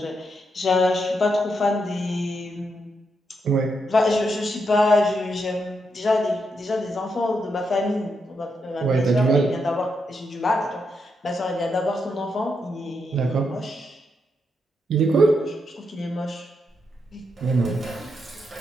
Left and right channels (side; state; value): both; normal; correlation 0.82